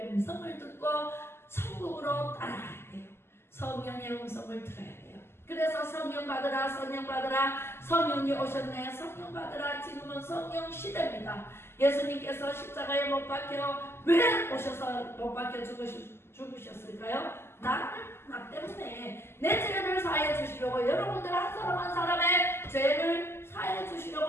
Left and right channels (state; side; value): late; right; 0.12 ms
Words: 음성을 듣고 천국으로 따라가야 돼요. 성령의 음성을 들어야 돼요. 그래서 성령 받으라, 성령 받으라, 성령이 오셨네, 성령 받으라. 지금은 성령 시대입니다. 예수님께서 십자가에 못 박혀 왜 오셔서 못 박혀 죽으셨을까요? 나 때문에 내 죄를 사해 주시려고, 여러분들 한 사람 한 사람의 죄를 사해